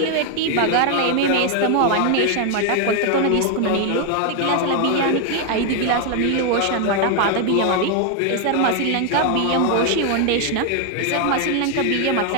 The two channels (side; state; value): both; different; correlation 0.01